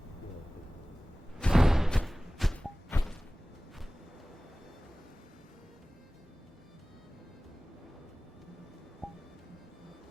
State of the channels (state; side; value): normal; both; correlation 0.98